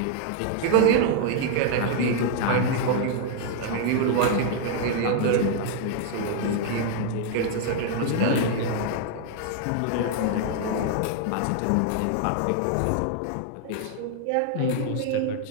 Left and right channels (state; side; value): different; both; correlation 0.00